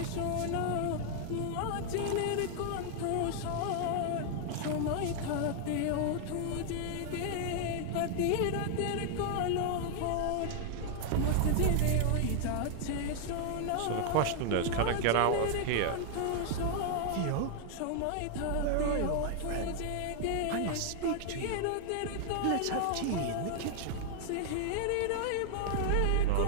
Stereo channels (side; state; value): both; different; correlation 0.00